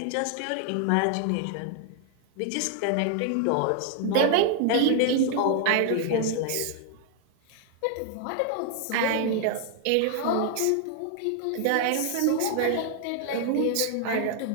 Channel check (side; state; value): both; different; correlation 0.00